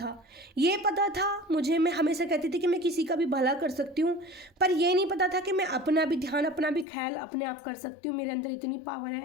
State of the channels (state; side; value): drops out; right; at 6.9 s